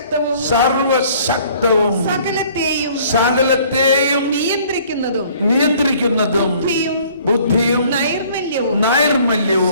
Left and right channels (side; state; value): both; inverted; correlation -0.56